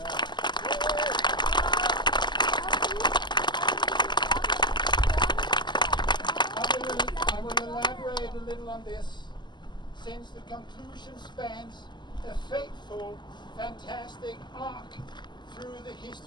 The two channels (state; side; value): late; right; 0.21 ms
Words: I will elaborate a little on this, since the conclusion spans a fateful, fantastic arc through the